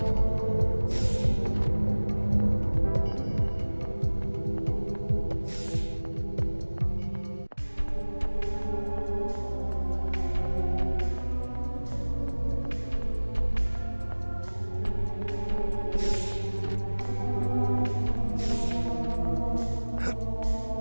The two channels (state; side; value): inverted; both; correlation -1.00